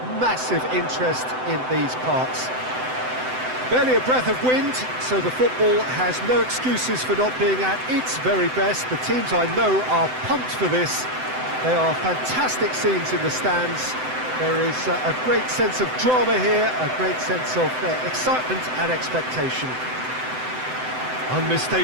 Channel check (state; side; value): late; left; 7.8 ms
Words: massive interest in these parts. Barely a breath of wind, so the football has no excuses for not being at its very best. The teams I know are pumped for this. They are fantastic scenes in the stands. There is a great sense of drama here, a great sense of excitement and expectation.